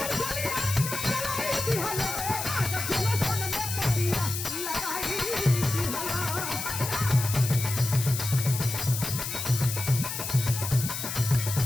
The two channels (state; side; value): noise; left; hiss, 5 dB below the sound